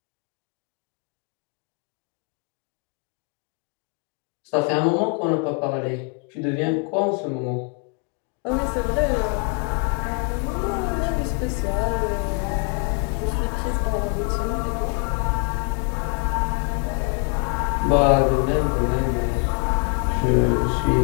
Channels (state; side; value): quieter; right; 35.9 dB